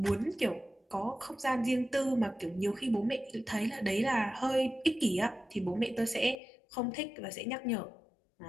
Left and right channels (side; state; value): right; drops out; at 6.4 s